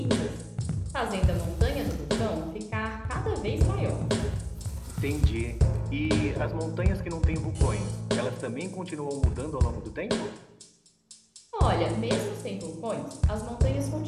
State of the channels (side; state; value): both; identical; correlation 1.00